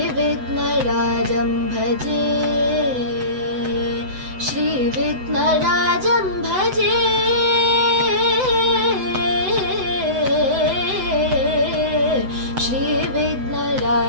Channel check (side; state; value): left; late; 7.9 ms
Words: ವಿಘ್ನರಾಜಂ ಭಜೆ, ಶ್ರೀ ವಿಘ್ನರಾಜಂ ಭಜೆ, ಶ್ರೀ